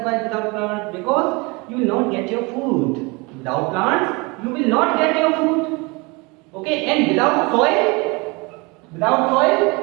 without plants because you will not get your food. Without plants, you will not get your food. Okay, and without soil,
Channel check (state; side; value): quieter; left; 27.3 dB